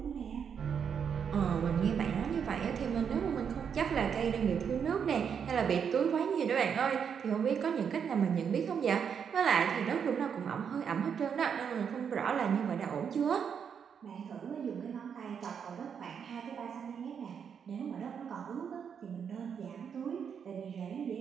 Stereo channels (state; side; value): quieter; left; 7.3 dB